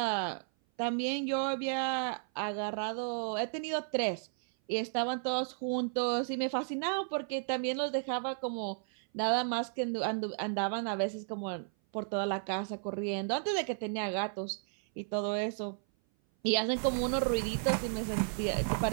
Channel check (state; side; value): silent; left; 55 dB below the other